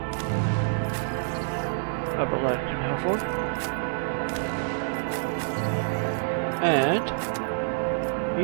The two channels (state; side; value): silent; left; digital silence